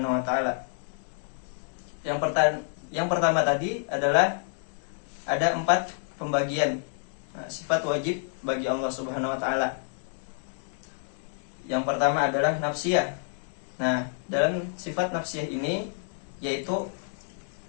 wa taala. Yang pertama tadi adalah ada 4 pembagian sifat wajib bagi Allah Subhanahu wa taala. Yang pertama adalah nafsiyah. Nah, dalam sifat nafsiyah ini yaitu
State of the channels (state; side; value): silent; right; digital silence